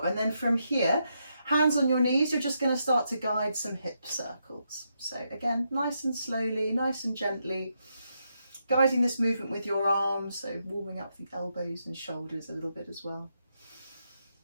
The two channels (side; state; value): both; inverted; correlation -0.81